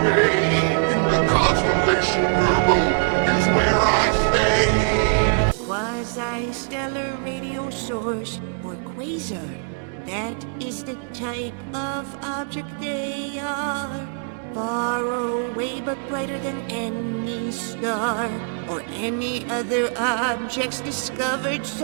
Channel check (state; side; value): silent; left; digital silence